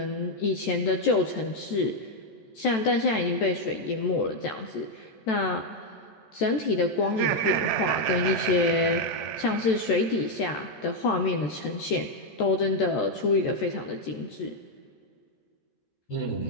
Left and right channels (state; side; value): late; right; 14 ms